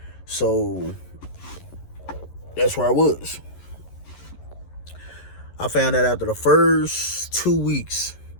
So that's where I was. I found out after the first 2 weeks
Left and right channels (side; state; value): right; late; 11 ms